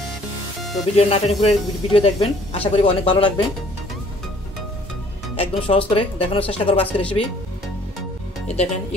তো ভিডিও না টেনে পুরো ভিডিও দেখবেন, আশা করি অনেক ভালো লাগবে। একদম সহজ করে দেখানোর চেষ্টা করবো আজকে রেসিপি। এই দেখেন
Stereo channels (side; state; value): both; normal; correlation 0.58